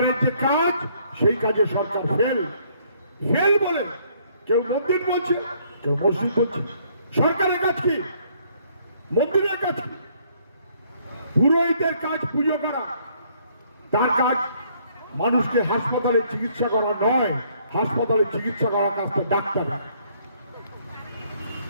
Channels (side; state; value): both; inverted; correlation -0.65